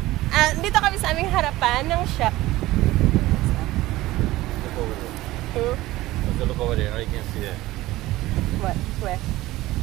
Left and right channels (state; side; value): quieter; left; 17.5 dB